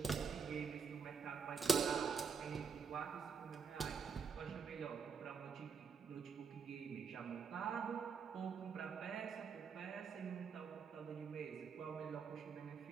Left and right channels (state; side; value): quieter; left; 5.7 dB